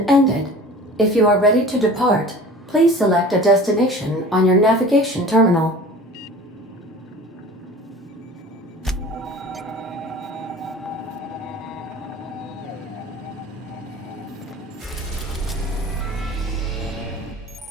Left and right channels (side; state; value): both; normal; correlation 0.41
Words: ended. If you are ready to depart, please select a destination on your navigation terminal.